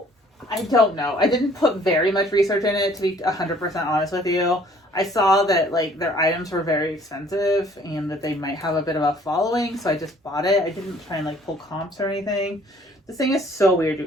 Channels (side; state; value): both; normal; correlation 0.57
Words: I don't know. I didn't put very much research in it, to be 100% honest with you. I saw that like their items were very expensive and that they might have a bit of a following, so I just bought it. I didn't try and like pull comps or anything. This thing is so weird, you